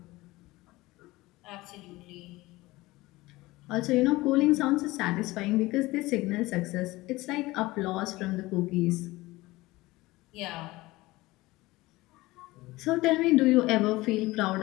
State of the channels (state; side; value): quieter; right; 19.8 dB